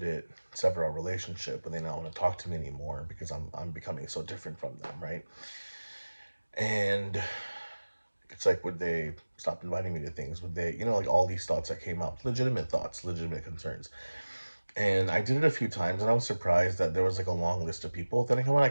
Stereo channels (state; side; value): inverted; both; correlation -1.00